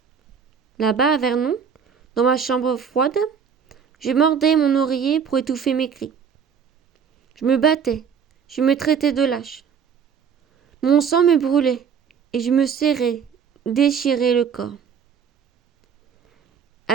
Là-bas, à Vernon, dans ma chambre froide, je mordais mon oreiller pour étouffer mes cris. Je me battais, je me traitais de lâche. Mon sang me brûlait, et je me serrais, déchirais le corps.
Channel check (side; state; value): left; quieter; 6.9 dB